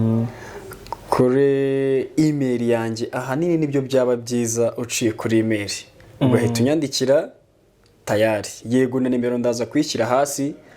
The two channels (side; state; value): both; identical; correlation 1.00